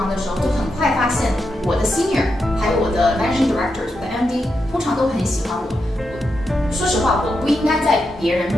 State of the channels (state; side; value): normal; both; correlation 0.85